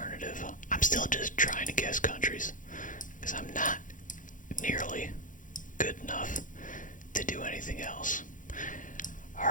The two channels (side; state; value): right; late; 0.38 ms